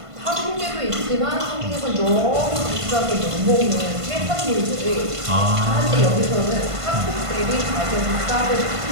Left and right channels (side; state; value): left; late; 1.5 ms